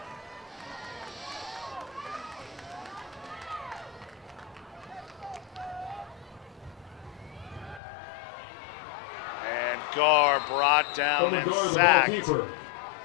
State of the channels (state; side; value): drops out; right; at 7.8 s